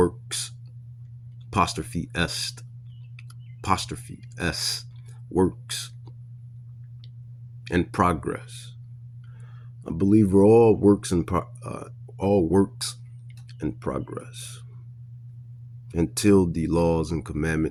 apostrophe S, works and progress. I believe we're all works and progress until the laws and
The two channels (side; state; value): both; identical; correlation 1.00